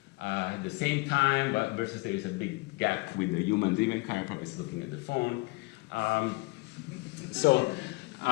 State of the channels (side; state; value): right; quieter; 25.8 dB